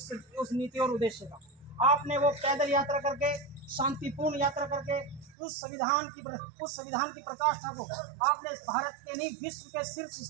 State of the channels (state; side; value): drops out; left; at 5.4 s